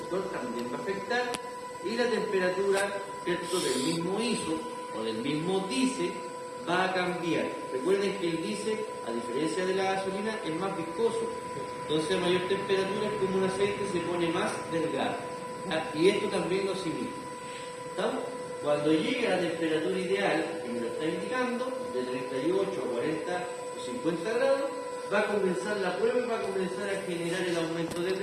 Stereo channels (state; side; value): identical; both; correlation 1.00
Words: también va a afectar, y la temperatura, ¿cierto?, del mismo ISO o del mismo diésel va a cambiar. Recuerden que el diésel, a diferencia de la gasolina, es más viscoso. Entonces, a mayor temperatura, es como un aceite, se pone más delgado. ¿Ya? Y esto también lo asimila. ¿Estamos? Cuando llegue a la temperatura ideal, que me lo está indicando, de 38 a 40 o 50 grados, va a comenzar la prueba y va a comenzar a generar el aumento de